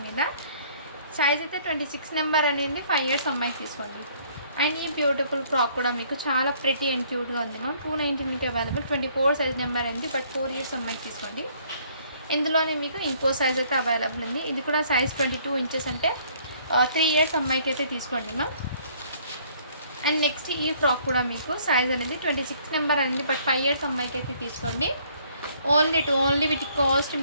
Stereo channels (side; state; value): both; inverted; correlation -0.61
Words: మీద. సైజ్ అయితే 26 నెంబర్ అనేది 5 ఇయర్స్ అమ్మాయికి తీసుకోండి. అండ్ ఈ బ్యూటిఫుల్ ఫ్రాక్ కూడా మీకు చాలా ప్రిటీ అండ్ క్యూట్గా ఉంది మ్యామ్. 299కి అవైలబుల్. 24 సైజ్ నెంబర్ అండి బట్ 4 ఇయర్స్ అమ్మాయికి తీసుకోండి. ఇందులోనే మీకు ఇంకో సైజ్ అయితే అవైలబుల్ ఉంది. ఇది కూడా సైజ్ 22 ఇంచెస్ అంటే 3 ఇయర్స్ అమ్మాయికి అయితే తీసుకోండి మ్యామ్. అండ్ నెక్స్ట్ ఈ ఫ్రాక్ కూడా మీకు సైజ్ అనేది 26 నెంబర్ అనేది బట్ 5 ఇయర్స్ అమ్మాయికి అయితే తీసుకోండి. ఓన్లీ వీటి కాస్ట్